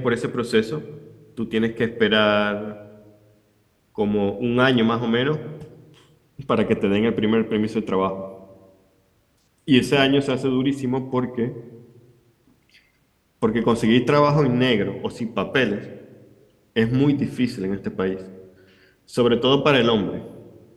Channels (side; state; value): both; identical; correlation 1.00